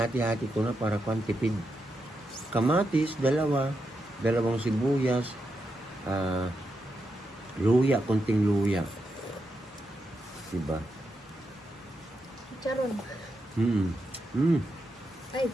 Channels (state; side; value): normal; both; correlation 0.85